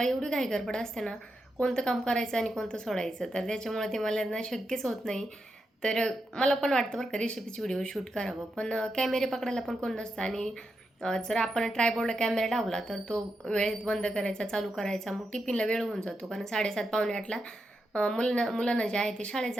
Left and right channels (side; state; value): both; normal; correlation 0.86